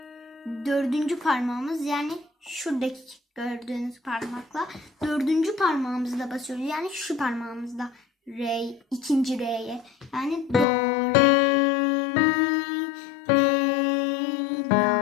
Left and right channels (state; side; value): drops out; right; at 10.7 s